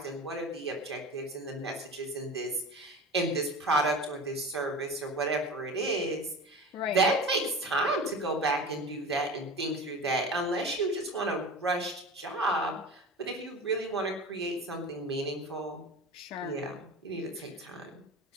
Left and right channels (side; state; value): both; normal; correlation 0.33